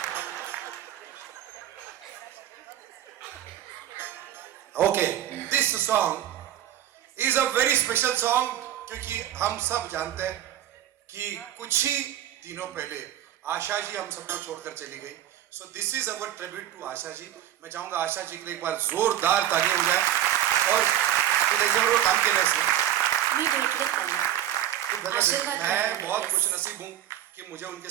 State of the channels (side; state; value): left; quieter; 11.8 dB